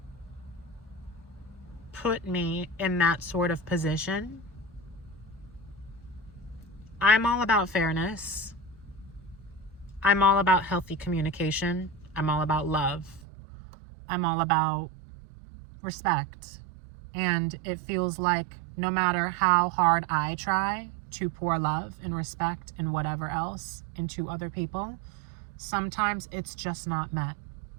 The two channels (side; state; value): left; drops out; at 13.2 s